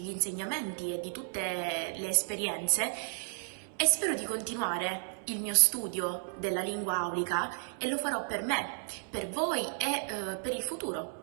insegnamenti e di tutte le esperienze e spero di continuare il mio studio della lingua aulica e lo farò per me, per voi e per il futuro,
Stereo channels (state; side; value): silent; left; 56 dB below the other